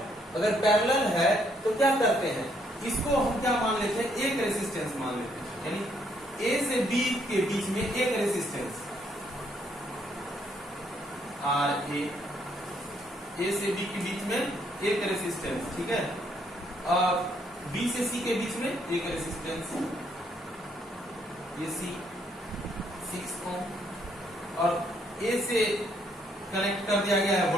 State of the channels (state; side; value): normal; both; correlation 0.70